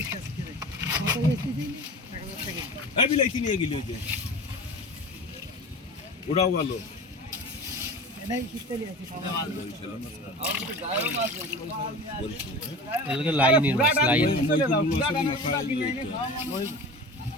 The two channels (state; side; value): normal; both; correlation 0.35